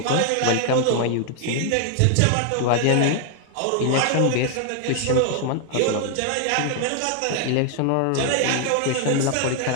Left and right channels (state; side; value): different; both; correlation 0.00